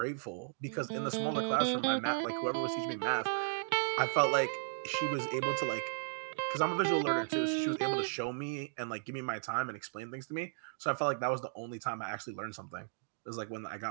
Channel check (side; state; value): left; silent; digital silence